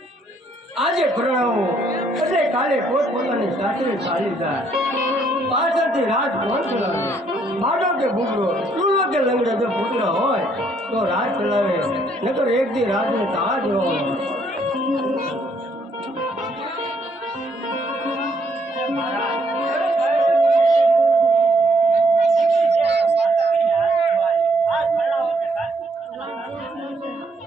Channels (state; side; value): normal; both; correlation 0.69